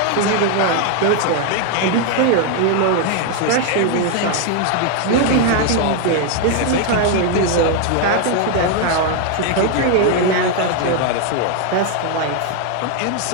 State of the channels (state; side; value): different; both; correlation 0.01